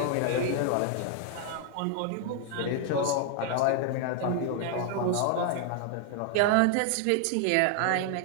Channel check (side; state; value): both; different; correlation 0.00